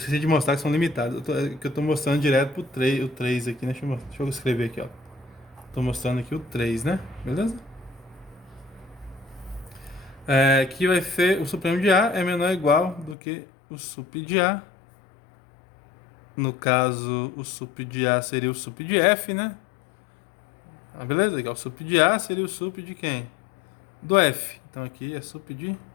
de mostrar que são limitados. Eu tô mostrando direto pro 3, o 3 aqui, né? Deixa eu escrever aqui, ó. Tô mostrando aqui o 3, né? Beleza? Que vai ser o supremo de A é menor ou igual do que o sup de A. No caso, o sup de A seria o sup de F, né? Beleza? Aqui, ó, o sup de A seria o sup de quem? Do F. Então aqui é sup de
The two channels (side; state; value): right; drops out; at 13.2 s